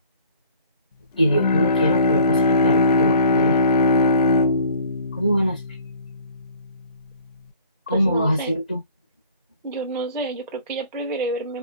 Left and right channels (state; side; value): inverted; both; correlation -0.49